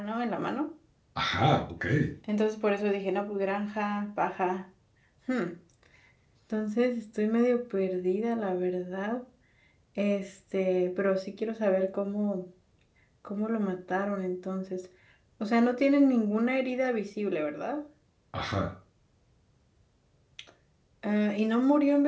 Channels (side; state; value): both; identical; correlation 1.00